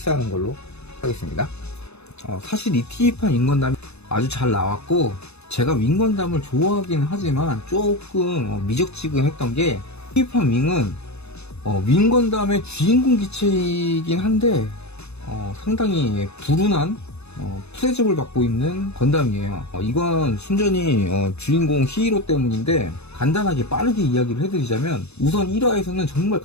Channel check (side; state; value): right; late; 0.80 ms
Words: 걸로 하겠습니다. 사실 이 TV판 윙건담이 아주 잘 나왔고, 제가 윙건담을 좋아하긴 하지만 조금 미적지근했던 게, TV판 윙은 윙건담의 주인공 기체이긴 한데 상당히 불운한 프레접을 받고 있는 건담이에요. 이건 순전히 주인공 히어로 때문인데, 간단하게 빠르게 이야기를 해드리자면, 우선 1화에서는 정말